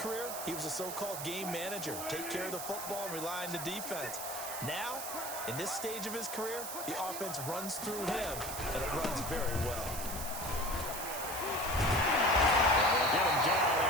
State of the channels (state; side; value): noise; right; hiss, 6 dB below the sound